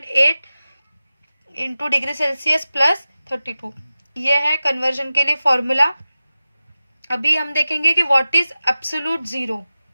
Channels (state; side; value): inverted; both; correlation -0.95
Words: into degree Celsius plus 32। ये है कन्वर्जन के लिए फॉर्मूला। अभी हम देखेंगे कि what is absolute zero.